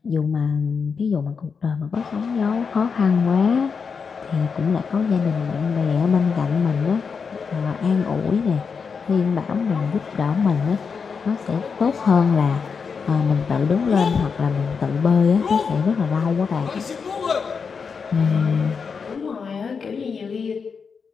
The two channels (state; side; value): quieter; right; 5.7 dB